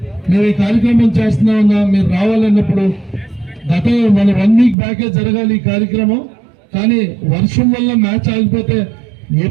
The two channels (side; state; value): left; drops out; at 4.8 s